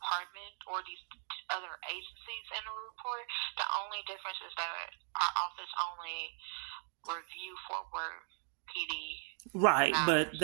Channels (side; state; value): left; silent; 52 dB below the other